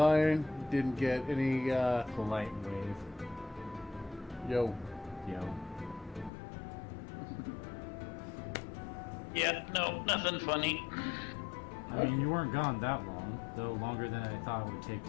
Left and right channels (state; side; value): drops out; right; at 6.3 s